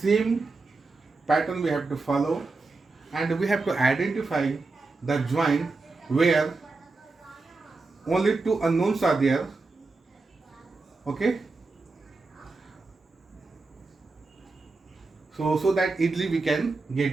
pattern we have to follow, and we have to identify the joint where only two unknowns are there. Okay, so that easily we can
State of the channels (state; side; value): quieter; left; 3.7 dB